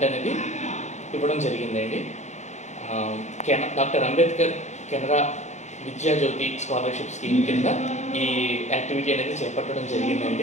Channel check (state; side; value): late; right; 0.34 ms